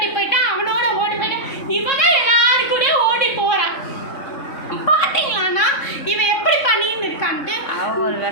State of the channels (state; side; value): late; right; 3.7 ms